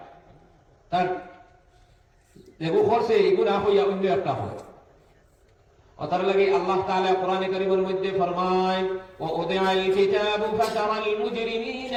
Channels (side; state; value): both; identical; correlation 1.00